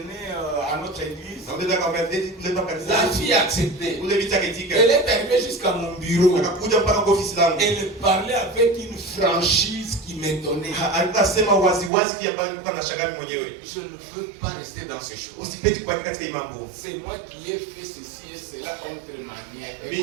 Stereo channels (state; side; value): drops out; left; at 11.9 s